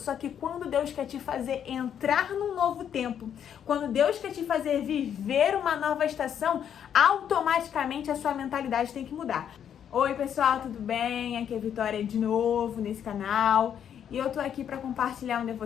que quando Deus quer te fazer entrar num novo tempo, quando Deus quer te fazer viver uma nova estação, automaticamente a sua mentalidade tem que mudar. Oi pessoal, tudo bem? Aqui é a Vitória de novo nesse canal. E eu tô aqui para compartilhar um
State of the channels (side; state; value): right; quieter; 8.9 dB